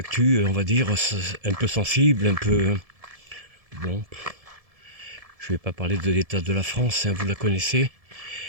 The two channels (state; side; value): late; left; 1.7 ms